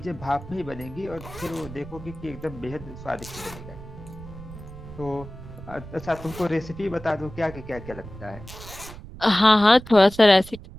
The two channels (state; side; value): noise; right; rumble, 14 dB below the sound